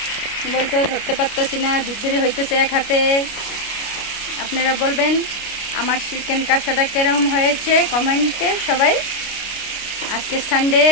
বলতেও ধরতে পারতেছি না, ধুপধুরি হইতেছে এক হাতে। আপনারা বলবেন আমার চিকেন কষাটা কিরম হয়েছে কমেন্টে সবাই। আজকে সানডে,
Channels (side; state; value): right; late; 29 ms